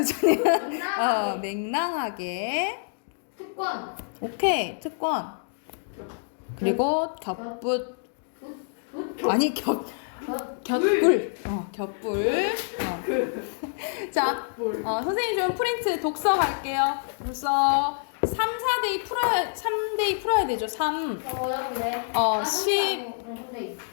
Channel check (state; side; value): silent; right; digital silence